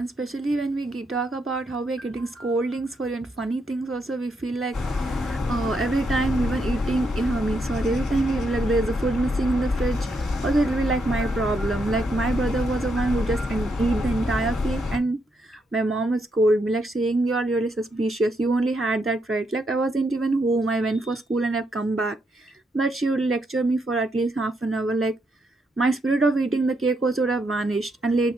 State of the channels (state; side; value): normal; both; correlation 0.78